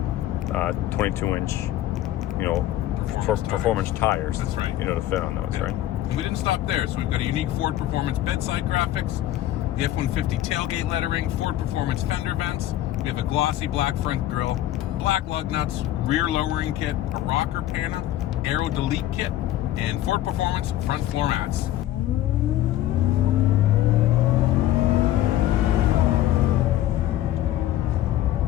22-inch, performance tires. That's right. To fit on those, Yeah. right? And we didn't stop there, so we've got a unique Ford Performance bedside graphics, the F-150 tailgate lettering, Ford Performance fender vents. We have a glossy black front grille, black lug nuts, rear lowering kit, a rocker panel, Aero delete kit, and Ford Performance front floor mats.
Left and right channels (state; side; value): quieter; right; 13.6 dB